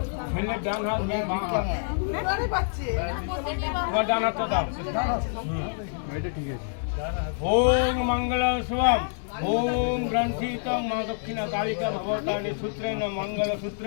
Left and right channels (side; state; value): right; silent; digital silence